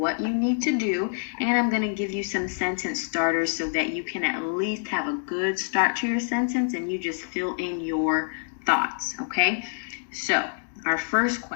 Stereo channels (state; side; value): silent; right; digital silence